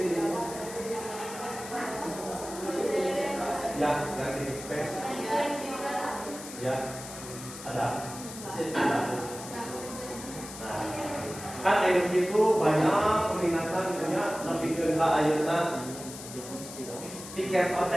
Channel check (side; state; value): left; noise; hiss, 12 dB below the sound